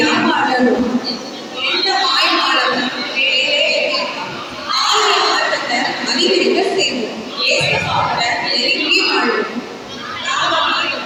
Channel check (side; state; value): both; identical; correlation 1.00